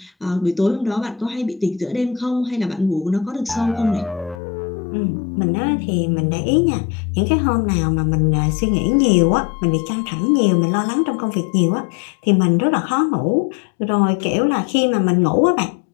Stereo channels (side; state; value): right; drops out; at 4.4 s